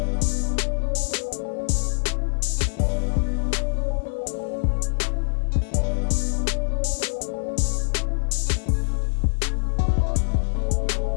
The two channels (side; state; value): right; silent; 57 dB below the other